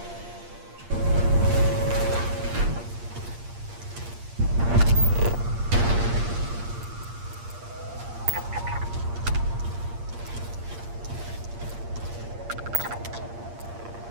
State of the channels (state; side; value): late; left; 8.6 ms